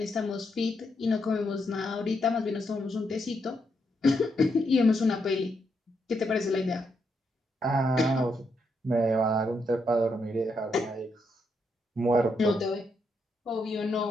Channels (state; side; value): normal; both; correlation 0.79